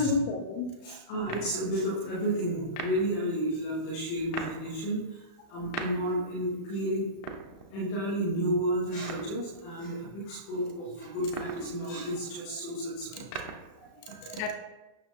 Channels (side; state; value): right; late; 36 ms